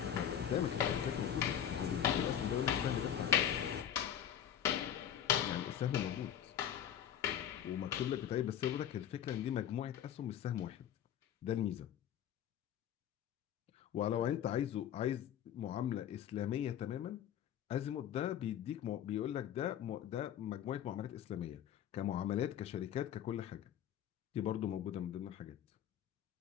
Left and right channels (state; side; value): quieter; right; 10.0 dB